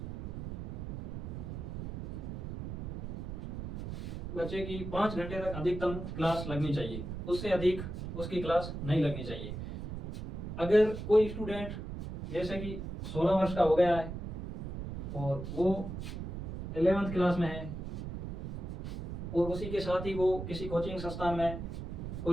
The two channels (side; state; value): right; noise; rumble, 7 dB below the sound